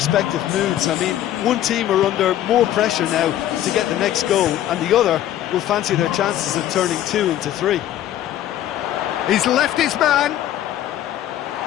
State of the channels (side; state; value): right; quieter; 12.4 dB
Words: moods. I mean, one team are under more pressure now to get the next goal, and the other will fancy their chances of turning 2 into 3. He's left his man.